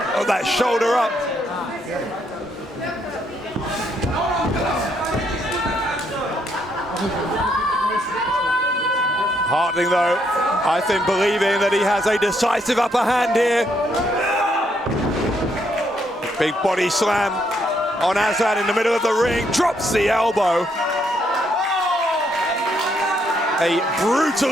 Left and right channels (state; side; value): normal; both; correlation 0.73